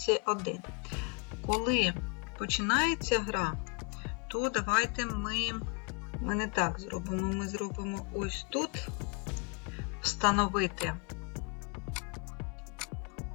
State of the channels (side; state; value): right; quieter; 34.6 dB